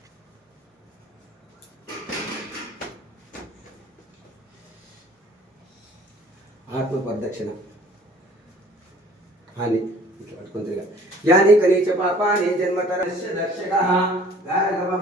आत्म प्रदक्षिण हानि यानी कनीच पापानि जन्मतरस्य दर्शकः गार्गव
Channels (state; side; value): normal; both; correlation 0.52